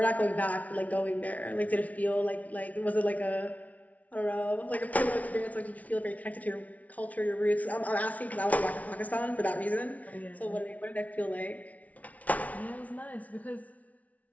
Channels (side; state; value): right; late; 0.070 ms